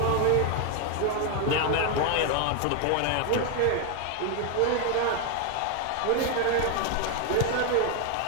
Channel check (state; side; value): different; both; correlation 0.01